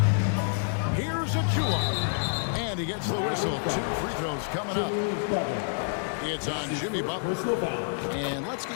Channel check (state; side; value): silent; right; digital silence